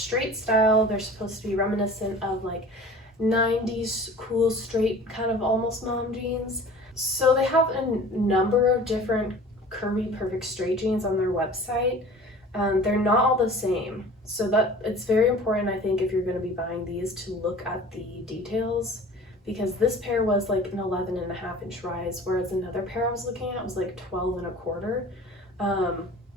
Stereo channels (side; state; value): both; normal; correlation 0.43